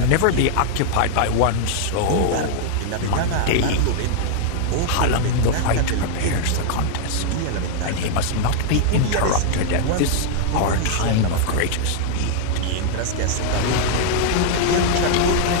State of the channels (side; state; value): both; different; correlation -0.01